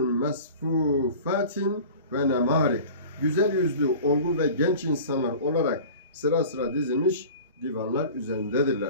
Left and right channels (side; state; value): both; inverted; correlation -0.40